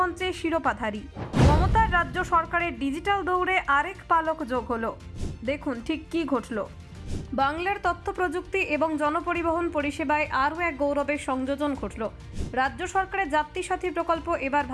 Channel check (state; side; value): identical; both; correlation 1.00